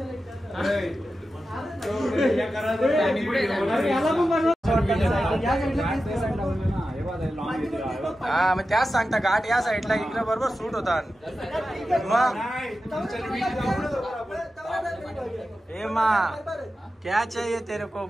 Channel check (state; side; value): normal; both; correlation 0.92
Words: हा मग त्याच सांगता घाट या साईडला इकडे बरोबर सूट होता मग ए माँ क्या चाहिए तेरे को